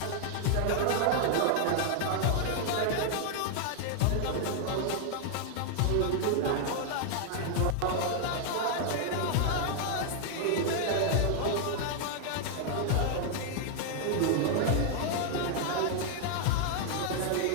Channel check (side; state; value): both; different; correlation 0.00